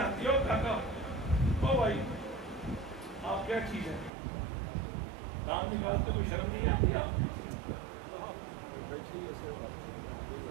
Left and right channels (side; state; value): left; drops out; at 4.1 s